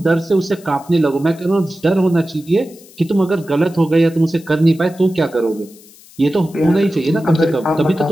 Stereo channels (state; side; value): noise; left; hiss, 24 dB below the sound